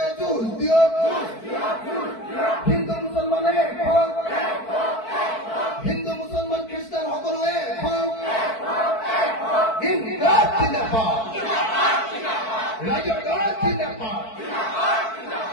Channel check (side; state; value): right; late; 4.6 ms